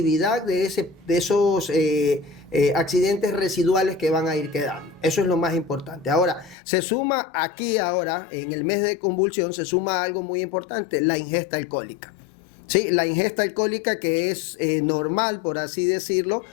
de esos accidentes residuales que van a ir quedando. Eso es lo más importante. Ahora, se suma aquí ahora, en el mes de convulsión, se suma algo muy importante: la ingesta alcohólica. Sí, la ingesta alcohólica, que es normal, por así decirlo,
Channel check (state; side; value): drops out; right; at 6.6 s